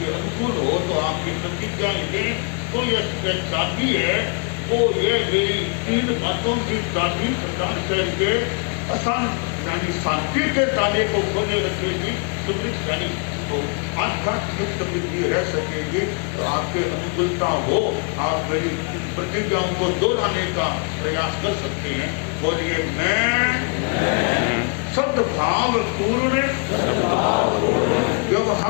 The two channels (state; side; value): quieter; right; 37.6 dB